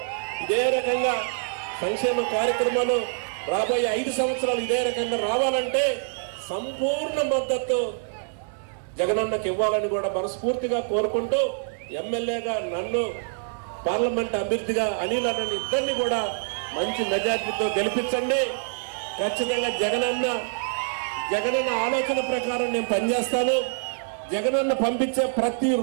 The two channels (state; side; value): silent; left; 61 dB below the other